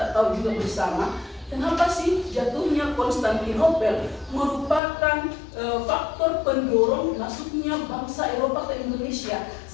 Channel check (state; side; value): drops out; right; at 4.8 s